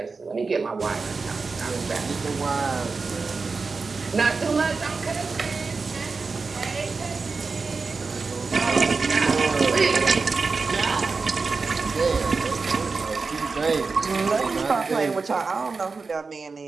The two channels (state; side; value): quieter; left; 4.4 dB